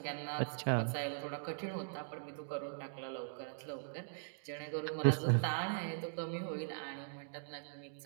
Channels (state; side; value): silent; left; digital silence